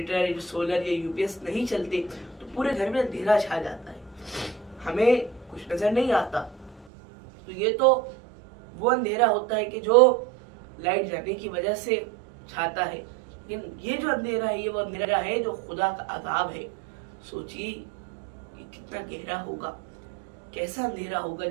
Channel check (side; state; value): left; drops out; at 6.9 s